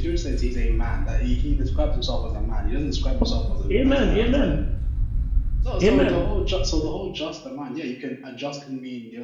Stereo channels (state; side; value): identical; both; correlation 1.00